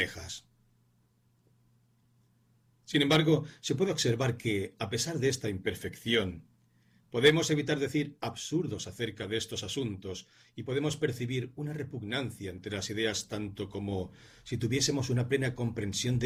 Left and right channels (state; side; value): identical; both; correlation 1.00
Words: Sin embargo, se puede observar que, a pesar de esta imperfección, podemos evitar decir absurdos acerca de estos asuntos y podemos percibir una repugnancia entre las ideas tanto como si tuviésemos una plena comprensión